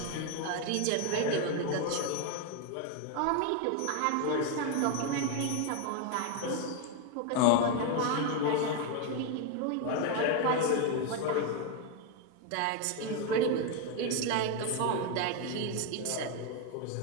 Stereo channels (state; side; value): different; both; correlation 0.01